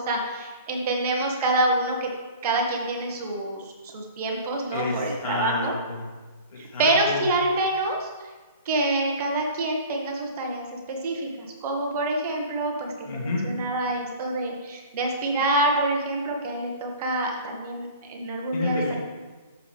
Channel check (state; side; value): inverted; both; correlation -0.40